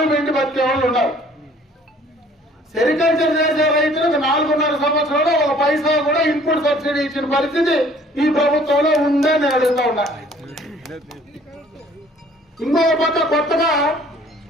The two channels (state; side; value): normal; both; correlation 0.55